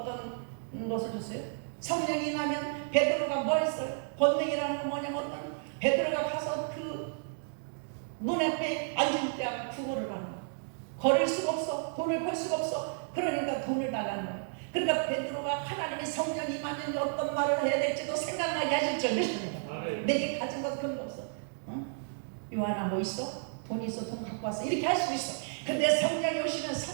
것을 줬어요? 성령이 나면 베드로가 뭐 했어요? 권능이라는 건 뭐냐면 어떤 베드로가 가서 그 문 앞에 앉을 때 구걸을 하는 거예요. 걸을 수가 없어. 돈을 벌 수가 없어. 그러니까 돈을 달라는 거예요. 그러니까 베드로가 하나님의 성령이 임하면 어떤 말을 해야 될지도 생각나게 하실 줄 믿습니다. 내게 가진 것 그런 거 없어. 요한아 뭐 있어? 돈 있어. 돈 갖고 왔어. 이렇게 할 수 있어. 근데 성령이 오시면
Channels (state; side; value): silent; left; digital silence